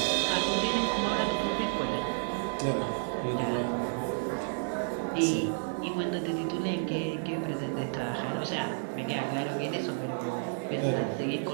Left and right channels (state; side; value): silent; left; digital silence